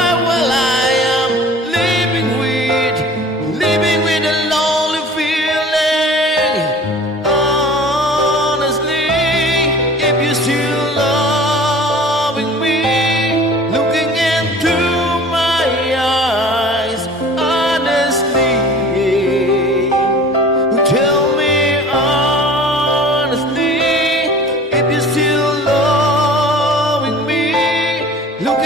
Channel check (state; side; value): normal; both; correlation 0.44